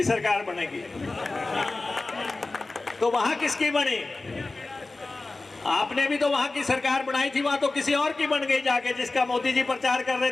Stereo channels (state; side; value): quieter; right; 3.3 dB